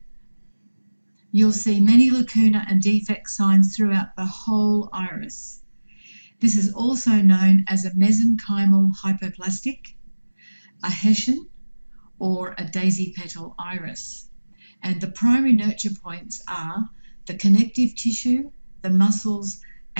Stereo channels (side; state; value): both; inverted; correlation -1.00